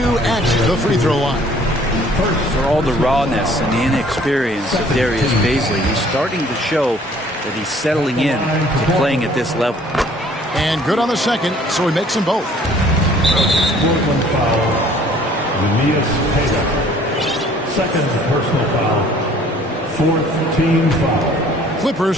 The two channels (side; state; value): both; normal; correlation 0.56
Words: at the free throw line. For all the rawness and the inexperience of Darius Bazley, he's starting to show that he's settling in to playing at this level. And good on the second, so he makes them both. Portland foul. Aeneas Payton. Second personal foul. Fourth team foul. Clippers